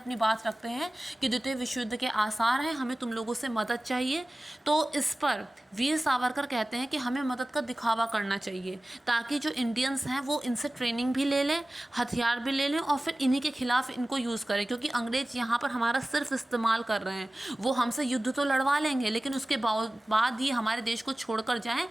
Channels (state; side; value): normal; both; correlation 0.97